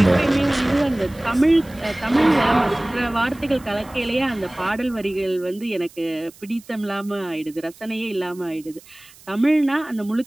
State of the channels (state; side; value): noise; right; hiss, 24 dB below the sound